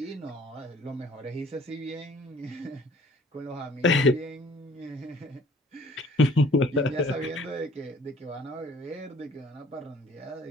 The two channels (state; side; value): normal; both; correlation 0.55